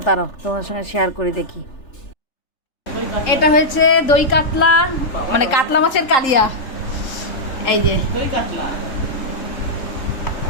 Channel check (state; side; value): late; right; 3.8 ms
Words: দাঁড়াও তোমাদের সঙ্গে শেয়ার করে দেখি। এটা হয়েছে দই কাতলা, মানে কাতলা মাছের কালিয়া, এই যে দই কাতলা।